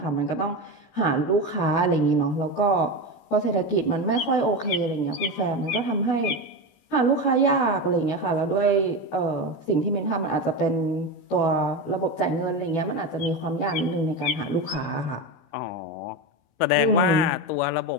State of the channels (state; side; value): late; right; 16 ms